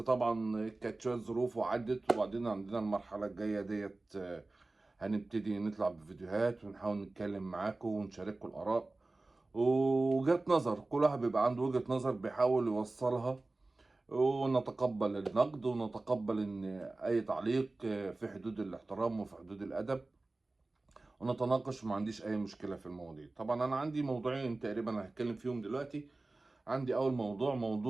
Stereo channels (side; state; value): left; quieter; 3.1 dB